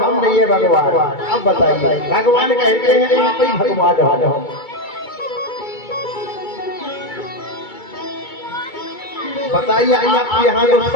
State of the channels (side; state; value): right; late; 2.3 ms